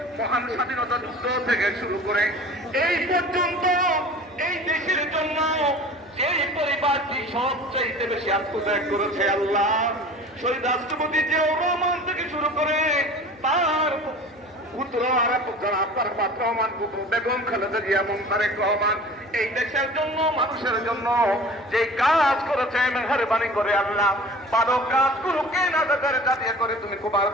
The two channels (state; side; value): noise; left; hum, 27 dB below the sound